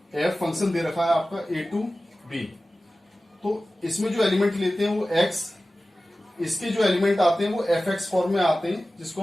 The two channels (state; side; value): normal; both; correlation 0.96